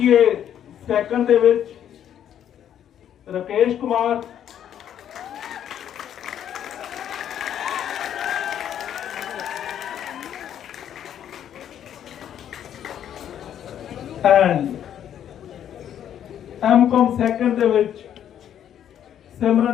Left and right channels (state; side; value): quieter; right; 10.0 dB